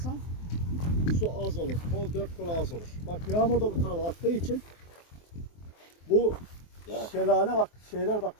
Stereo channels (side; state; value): right; late; 23 ms